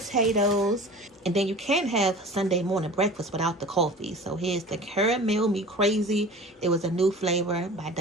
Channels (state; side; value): normal; both; correlation 0.40